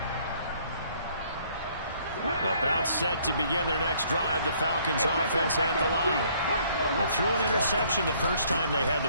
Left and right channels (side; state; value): both; inverted; correlation -0.63